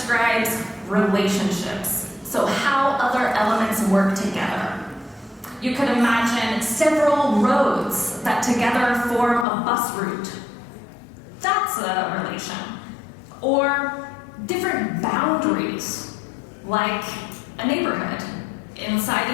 relationships. So how other elements work together. You could imagine several roads that together form a bus route. That's a relation. Or different boundaries, like a neighborhood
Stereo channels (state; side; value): drops out; right; at 9.5 s